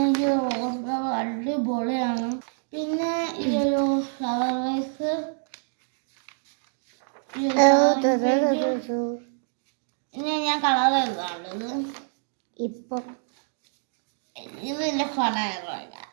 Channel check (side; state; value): left; silent; digital silence